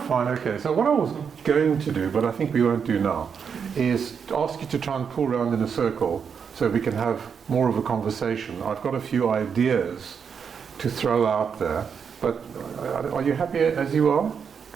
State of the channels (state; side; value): quieter; left; 6.7 dB